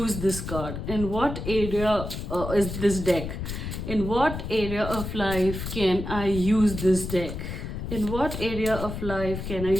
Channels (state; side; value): noise; left; rumble, 6 dB below the sound